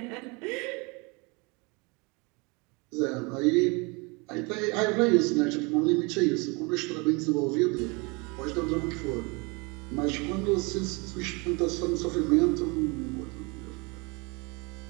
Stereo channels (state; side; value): quieter; left; 28.9 dB